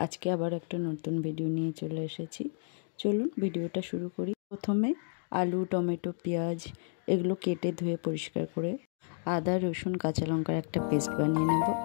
আজকে আবার একটা নতুন ভিডিও নিয়ে চলে এসেছি। চলুন ভিডিওটা শুরু করি। প্রথমে আলু, টমেটো, পেঁয়াজ এগুলো কেটে ধুয়ে পরিষ্কার করে আদা, রসুন, কাঁচা লঙ্কার একটা পেস্ট বানিয়ে নেব।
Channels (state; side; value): silent; right; digital silence